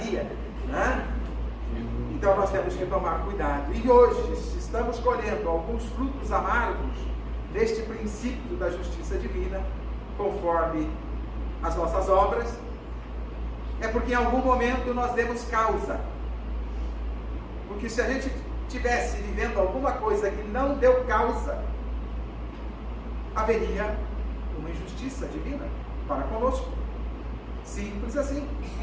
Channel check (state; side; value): identical; both; correlation 1.00